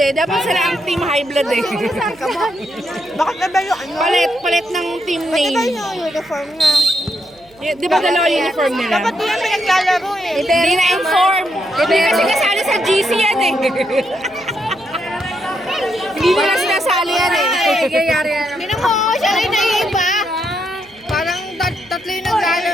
Dapat sila ang team high blood eh. Bakit na ba yung ano? Palit ng team Bakit ba name. yung uniform nga? Di ba dalawa uniform nila? Dapat di yan pinaglalaro eh. Hindi na-inform. Hindi kasi kasali sa GC yan eh. Hindi nila sinasali yan eh. Tinan mo, siya rin naiiba. Parang tatlo yung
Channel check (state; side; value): noise; right; hum, 29 dB below the sound